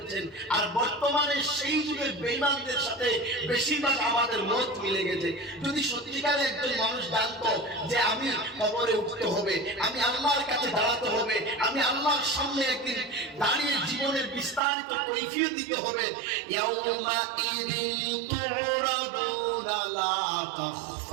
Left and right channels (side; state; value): left; drops out; at 14.6 s